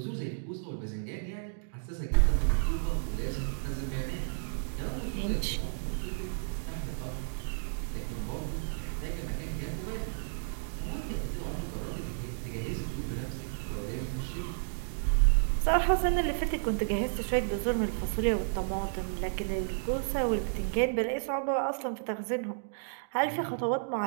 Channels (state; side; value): silent; left; digital silence